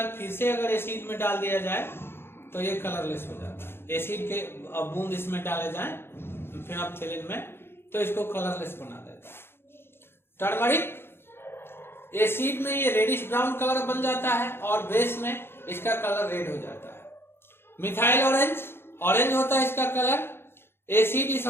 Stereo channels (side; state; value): right; late; 0.11 ms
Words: फिर से अगर एसिड में डाल दिया जाए तो ये कलरलेस हो जाता है। एसिड के बूंद इसमें डाले जाए फिनोल्फिनीन में तो इसको कलरलेस बना देता है। टर्मरिक, एसिड में ये रेडिश ब्राउन कलर बन जाता है और बेस में इसका कलर रेड हो जाता है। मिथाइल ऑरेंज, ऑरेंज होता है इसका कलर, एसिड इस